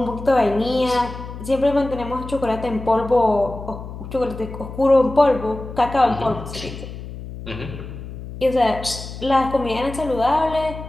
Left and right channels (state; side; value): noise; left; hum, 11 dB below the sound